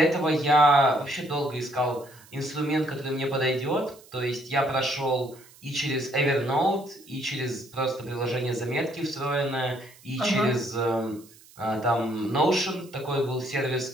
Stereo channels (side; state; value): right; noise; hiss, 24 dB below the sound